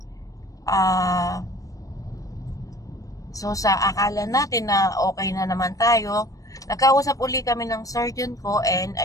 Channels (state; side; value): late; right; 0.16 ms